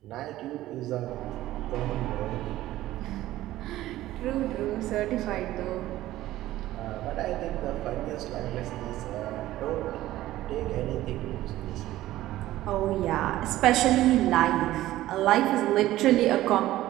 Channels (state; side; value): quieter; left; 15.2 dB